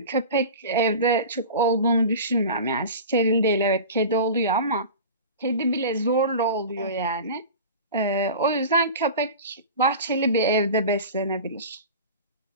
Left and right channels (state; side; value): inverted; both; correlation -0.33